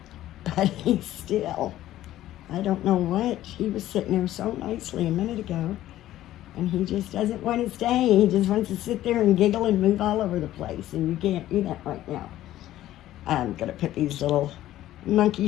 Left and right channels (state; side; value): quieter; right; 13.9 dB